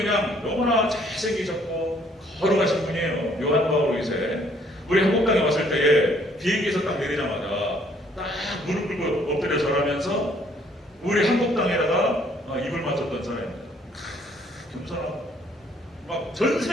너무나 잘생기셨고 거룩하신 분이에요. 요한 바오로 2세. 우리 한국 땅에 왔을 때에 비행기에서 딱 내리자마자 딱 무릎 꿇고 엎드려 절하면서 우리 한국 땅에다가 입을 맞췄던 사람입니다. 겸손하고 막 전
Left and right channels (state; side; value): normal; both; correlation 0.63